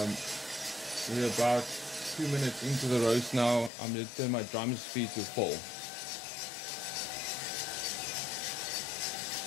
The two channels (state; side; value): drops out; right; at 3.7 s